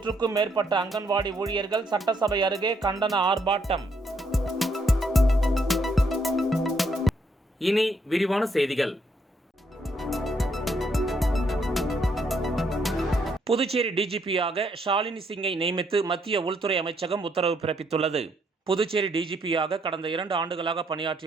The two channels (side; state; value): both; normal; correlation 0.72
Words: மேற்பட்ட அங்கன்வாடி ஊழியர்கள் சட்டசபை அருகே கண்டன ஆர்ப்பாட்டம். இனி விரிவான செய்திகள். புதுச்சேரி DGP-யாக ஷாலினி சிங்கை நியமித்து மத்திய உள்துறை அமைச்சகம் உத்தரவு பிறப்பித்துள்ளது. புதுச்சேரி DGP-யாக கடந்த 2 ஆண்டுகளாக